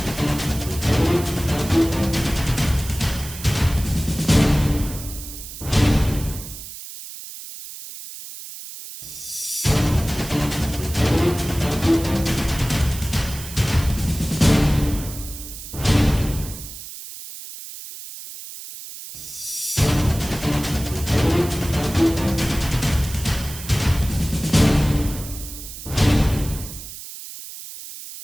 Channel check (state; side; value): noise; right; hiss, 12 dB below the sound